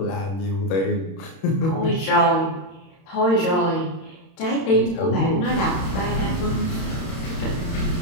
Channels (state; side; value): late; right; 31 ms